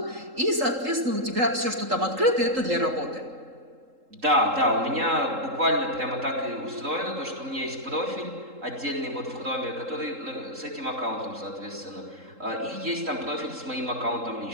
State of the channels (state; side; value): late; left; 3.8 ms